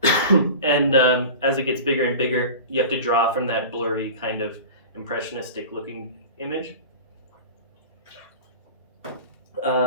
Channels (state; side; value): inverted; both; correlation -0.35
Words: And as it gets bigger and bigger, you have to draw from that blurry kind of impressionistic looking image.